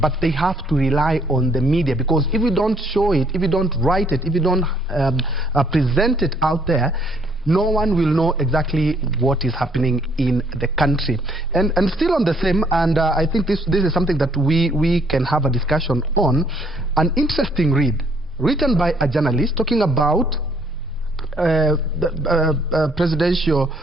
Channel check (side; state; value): both; normal; correlation 0.65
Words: they have to rely on the media, because if you don't show it, if you don't write it, if you don't present it out there, no one will know exactly what is happening in the country. And still on the same, and I think this is something that we can have a discussion on, an interesting read written by a journalist talking about the presidential